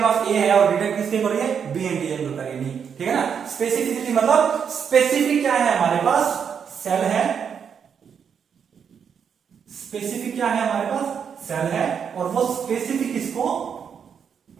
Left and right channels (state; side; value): quieter; left; 7.2 dB